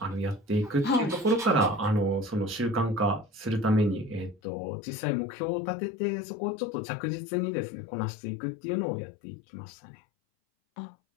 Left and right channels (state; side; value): drops out; right; at 4.4 s